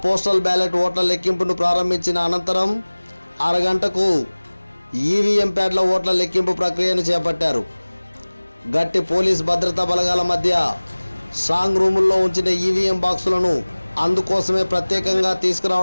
పోస్టల్ బ్యాలెట్ ఓట్ల లెక్కింపును ప్రారంభించిన అనంతరం అరగంటకు ఈవీఎం ప్యాడ్ల ఓట్ల లెక్కింపు ప్రక్రియను చేపట్టారు. గట్టి పోలీస్ భద్రతా బలగాల మధ్య స్ట్రాంగ్ రూముల్లో ఉంచిన ఈవీఎం బాక్సులను అందుకోసమే ప్రత్యేకంగా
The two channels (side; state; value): both; inverted; correlation -1.00